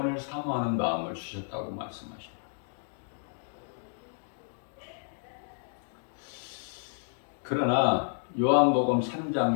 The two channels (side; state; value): right; silent; digital silence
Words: 사모하는 마음을 주셨다고 말씀하십니다. 그러나 요한복음 3장